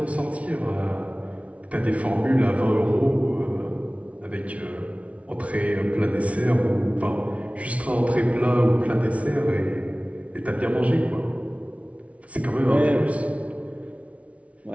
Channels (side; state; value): left; late; 0.065 ms